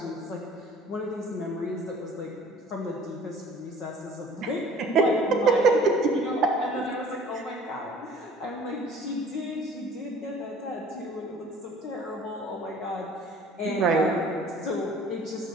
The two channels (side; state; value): both; normal; correlation 0.49